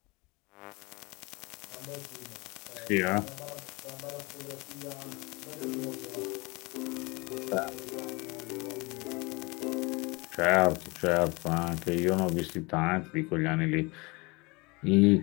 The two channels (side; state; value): right; quieter; 26.3 dB